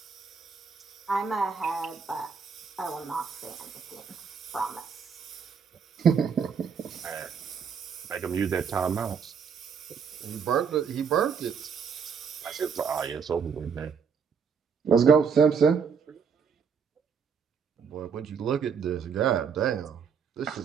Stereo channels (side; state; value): left; quieter; 6.3 dB